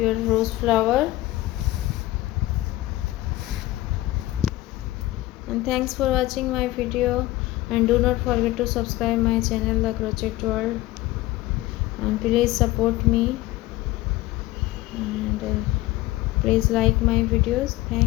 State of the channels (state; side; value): quieter; right; 17.3 dB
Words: rose flower. And thanks for watching my video, and do not forget to subscribe my channel The Crochet World, and please support me and please like my videos.